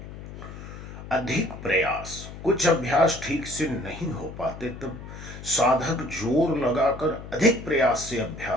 अधिक प्रयास, कुछ अभ्यास ठीक से नहीं हो पाते तब साधक जोर लगाकर अधिक प्रयास से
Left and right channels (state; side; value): noise; left; hum, 12 dB below the sound